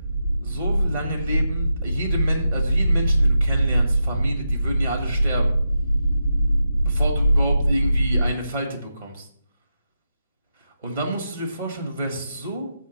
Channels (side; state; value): both; inverted; correlation -0.87